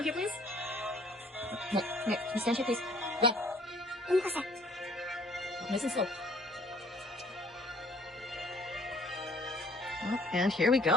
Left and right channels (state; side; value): normal; both; correlation 0.57